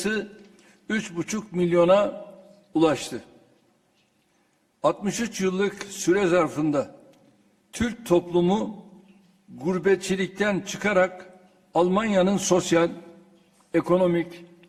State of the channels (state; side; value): identical; both; correlation 1.00